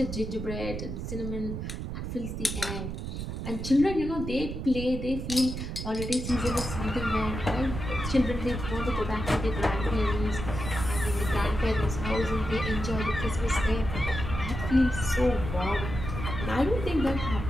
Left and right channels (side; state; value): right; noise; rumble, 5 dB below the sound